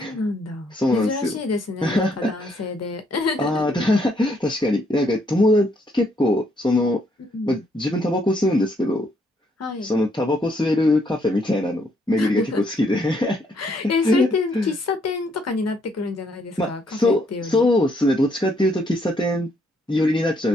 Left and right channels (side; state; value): both; normal; correlation 0.71